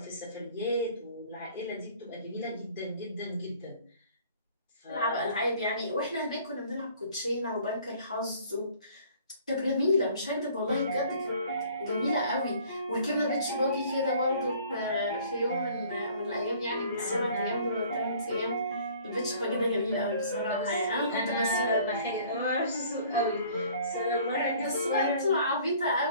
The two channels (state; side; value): inverted; both; correlation -0.54